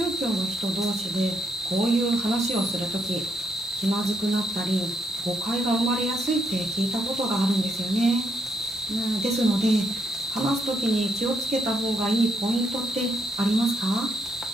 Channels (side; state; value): both; normal; correlation 0.76